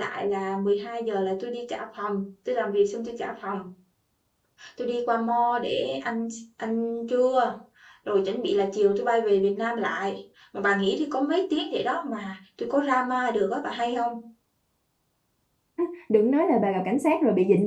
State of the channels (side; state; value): both; identical; correlation 1.00